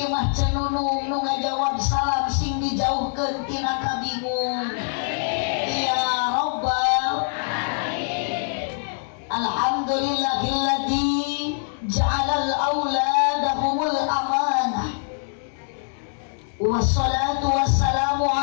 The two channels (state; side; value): silent; right; 63 dB below the other